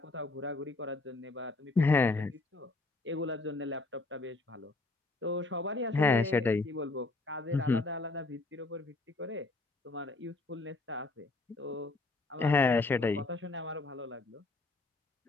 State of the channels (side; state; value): right; quieter; 3.3 dB